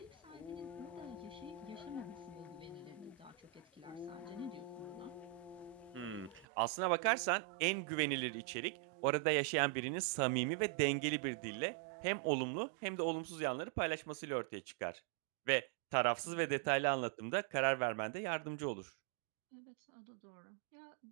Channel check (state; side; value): drops out; left; at 6.5 s